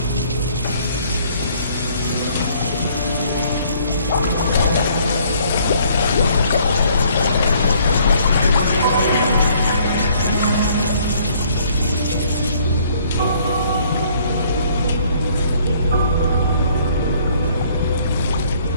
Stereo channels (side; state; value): both; inverted; correlation -0.61